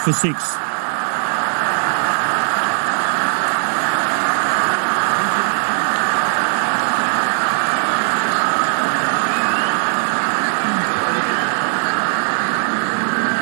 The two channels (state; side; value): silent; left; digital silence